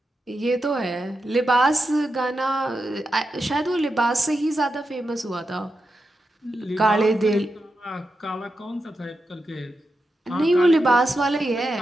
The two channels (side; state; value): both; normal; correlation 0.88